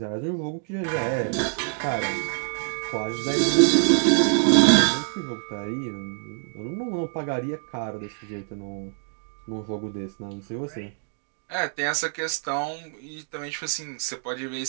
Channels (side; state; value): left; silent; digital silence